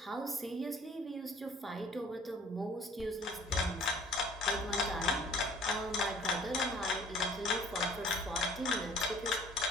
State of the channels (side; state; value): both; normal; correlation 0.53